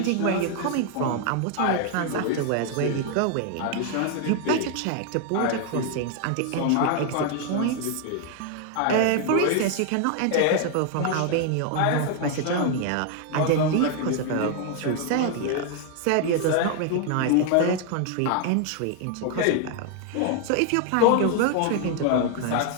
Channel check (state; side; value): different; both; correlation 0.00